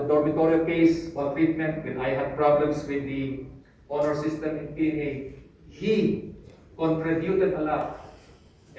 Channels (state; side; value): identical; both; correlation 1.00